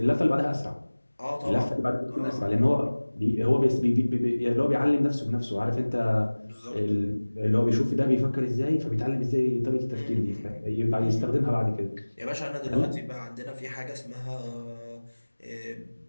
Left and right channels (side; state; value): both; inverted; correlation -1.00